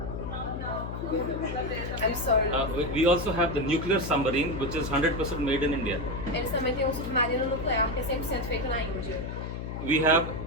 I'm sorry. We also have the nuclear submarine, which is 100% made in India. Eles também têm um submarino nuclear que é 100% feito na Índia. We have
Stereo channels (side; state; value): left; noise; hum, 6 dB below the sound